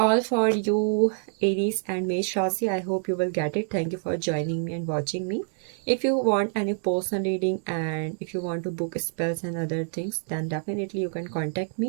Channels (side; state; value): left; silent; digital silence